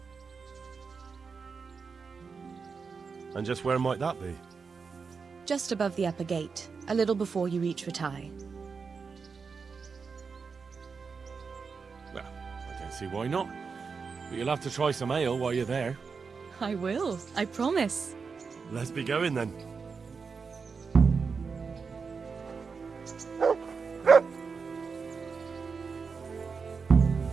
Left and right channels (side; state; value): left; quieter; 5.2 dB